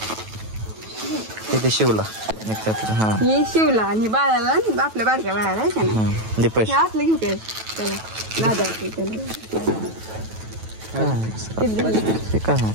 शिवला. हा ही शिवला आणि बाळाला आपल्या बारक्या बाळाला आहे का नाही? दे पैसे. असलं घेऊ काय त्याला दादा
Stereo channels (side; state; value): left; late; 9.2 ms